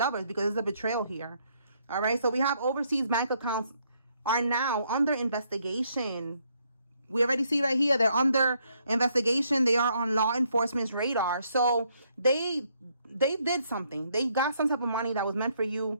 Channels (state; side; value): inverted; both; correlation -0.72